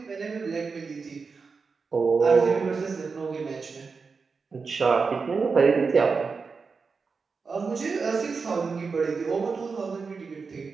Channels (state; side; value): quieter; left; 4.9 dB